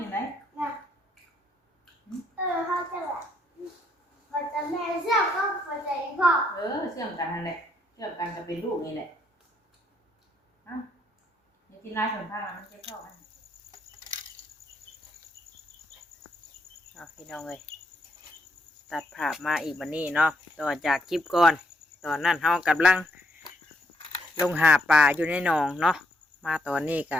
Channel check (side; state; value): both; normal; correlation 0.75